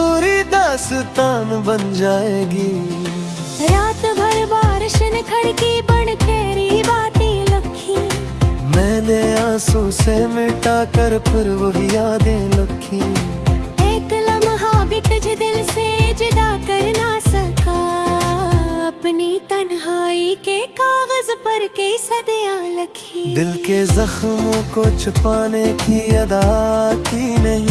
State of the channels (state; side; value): identical; both; correlation 1.00